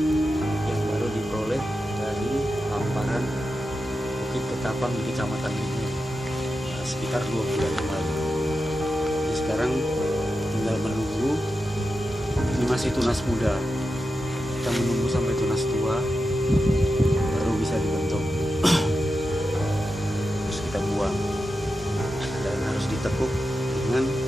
Bukit Ketapang di Kecamatan ini sekitar 2 bulan yang lalu. Jadi sekarang tinggal menunggu. Ini masih tunas muda, kita menunggu sampai tunas tua baru bisa dibentuk. Terus kita buang dan harus ditekuk dengan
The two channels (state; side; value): normal; both; correlation 0.90